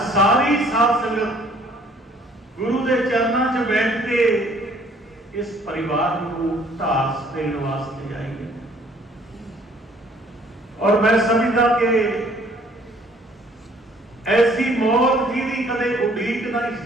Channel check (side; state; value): both; normal; correlation 0.59